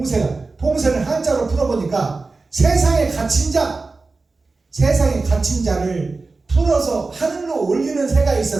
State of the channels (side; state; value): left; quieter; 3.8 dB